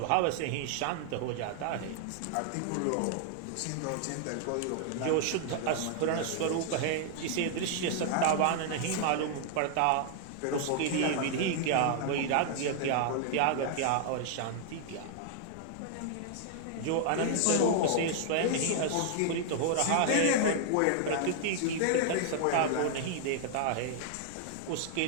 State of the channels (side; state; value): both; different; correlation -0.01